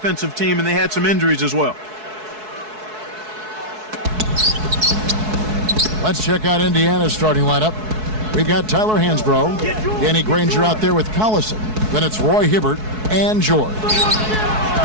team, and they had some injuries as well. Let's check out Indiana's starting lineup. We've got Tyler Hansbrough, Danny Granger out there with Collison. Then it's Roy Hibbert and George.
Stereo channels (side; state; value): left; late; 4.7 ms